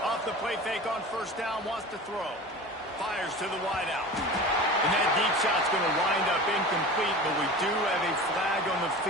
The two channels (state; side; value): normal; both; correlation 0.35